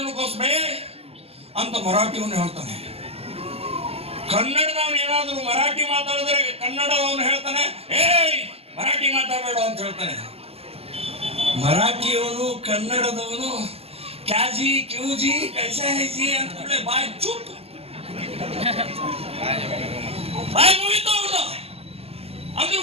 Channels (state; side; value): late; left; 0.29 ms